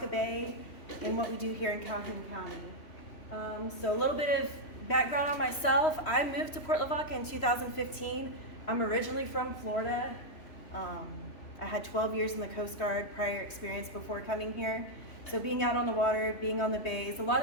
Bay and what we do here in Calhoun County. So a little bit of background on myself. I moved to Port Lavaca in 2015. I'm originally from Florida. I had 12 years in the Coast Guard prior experience before coming here. So being out on the water, being on the bays, a lot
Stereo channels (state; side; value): late; right; 3.1 ms